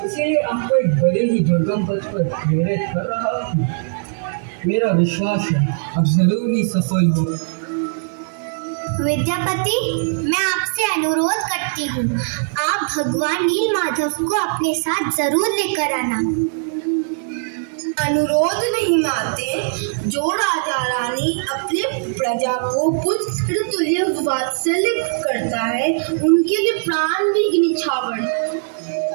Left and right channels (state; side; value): silent; left; digital silence